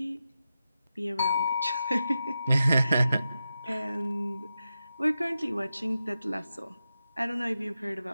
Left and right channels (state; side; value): inverted; both; correlation -0.90